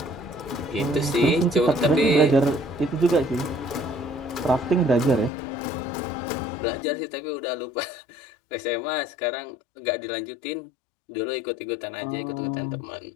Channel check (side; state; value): right; drops out; at 5.3 s